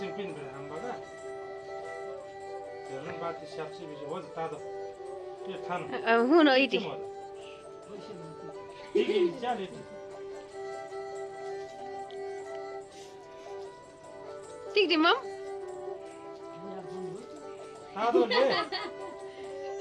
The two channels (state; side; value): identical; both; correlation 1.00